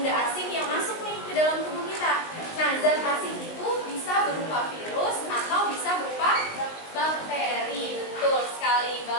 asing yang masuk nih ke dalam tubuh kita. Nah, zat asing itu bisa berupa virus atau bisa berupa bakteri. Betul sekali,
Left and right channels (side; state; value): right; late; 19 ms